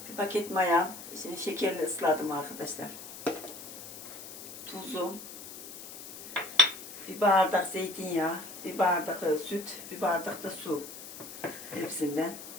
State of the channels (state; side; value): noise; left; hiss, 12 dB below the sound